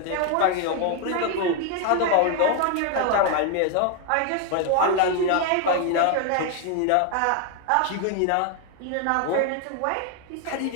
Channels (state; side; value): different; both; correlation 0.01